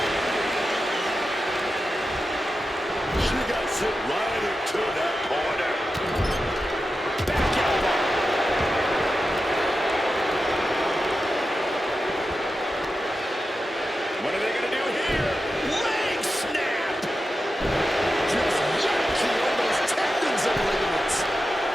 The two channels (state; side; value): normal; both; correlation 0.91